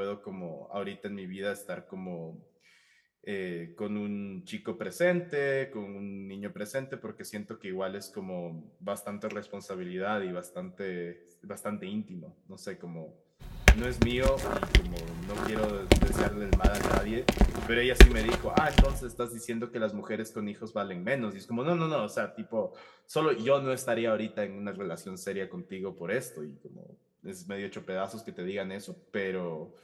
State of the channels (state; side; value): identical; both; correlation 1.00